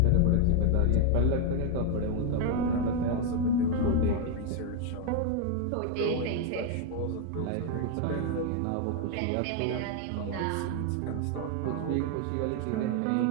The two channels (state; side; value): different; both; correlation 0.01